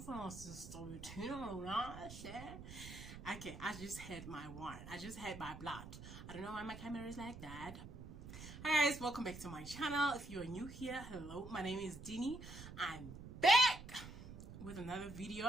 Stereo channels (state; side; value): noise; right; rumble, 12 dB below the sound